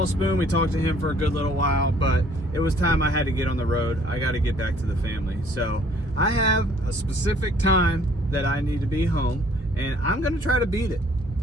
Spoon, we talked to him for a good little while, but it was time I had to get on the road. I got to get back to the family. So I have a specific time that I need to be home, and I'm gonna try to beat it.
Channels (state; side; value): normal; both; correlation 0.59